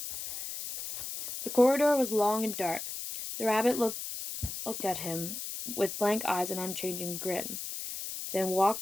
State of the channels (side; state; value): left; noise; hiss, 7 dB below the sound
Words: The corridor was long and dark. The rabbit looked at him with blank eyes and unchanging grin, then